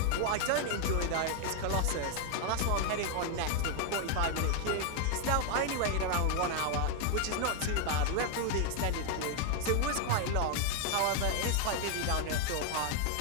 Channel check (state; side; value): different; both; correlation 0.00